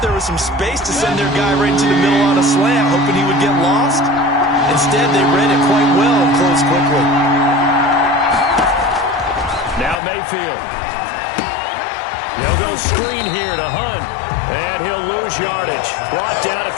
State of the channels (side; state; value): right; drops out; at 10.0 s